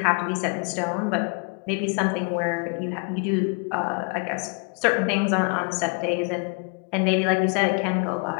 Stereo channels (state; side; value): quieter; right; 34.6 dB